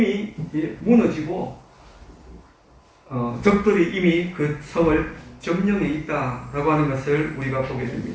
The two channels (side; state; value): both; identical; correlation 1.00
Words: 무너지고 적들이 이미 그 성을 점령해 있다라고 하는 것을 우리가 보게